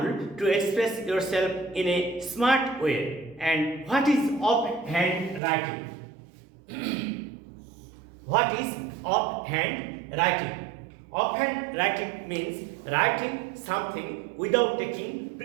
to express yourself in a smart way. And what is offhand writing? What is offhand writing? Offhand writing means writing something without taking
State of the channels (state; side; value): drops out; left; at 5.4 s